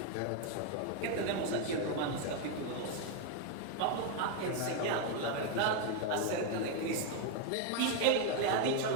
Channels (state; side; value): different; both; correlation 0.01